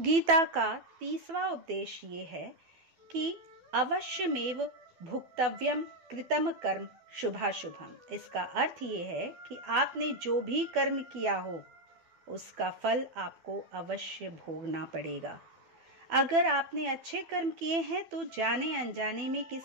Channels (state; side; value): late; left; 12 ms